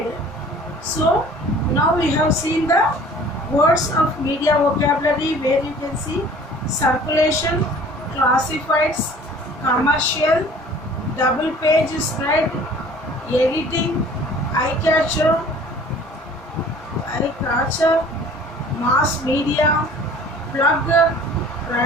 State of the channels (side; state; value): both; normal; correlation 0.49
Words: So now we have seen the words of media vocabulary, where you can see circulation, classifieds, commercial, double page spread, editing, eye catcher, mass media, plug,